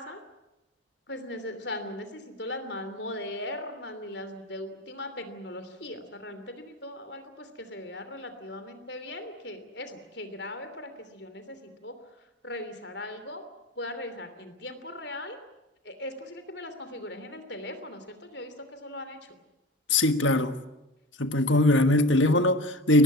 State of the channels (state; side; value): normal; both; correlation 0.33